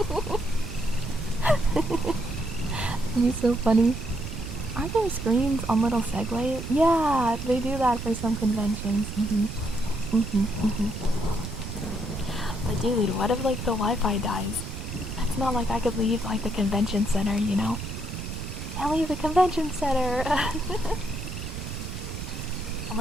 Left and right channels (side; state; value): right; noise; rumble, 7 dB below the sound